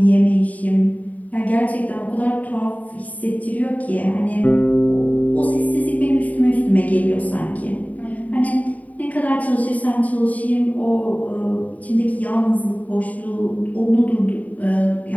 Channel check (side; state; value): right; late; 0.072 ms